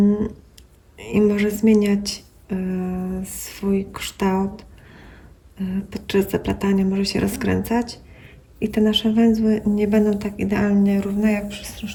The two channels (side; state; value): both; identical; correlation 1.00